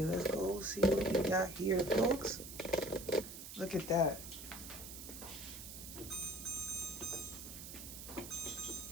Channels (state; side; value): noise; right; hiss, 11 dB below the sound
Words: Let's go see what we got here, folks. Look at that.